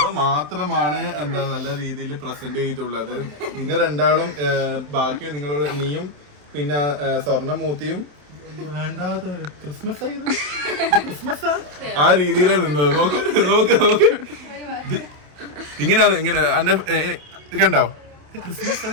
മാത്രമാണ് എന്താ നല്ല രീതിയിൽ പ്രസന്റ് ചെയ്തിട്ടുള്ളത്. നിങ്ങൾ രണ്ടാളും ബാക്കി നിങ്ങളുടെ നീയും പിന്നെ സ്വർണ്ണമൂർത്തിയും ക്രിസ്മസ് ആ രീതിയിലാണ് നിന്നത്. നോക്ക് ഇങ്ങനെ എന്റെ കണ്ടോ, ഇത്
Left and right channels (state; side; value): late; left; 27 ms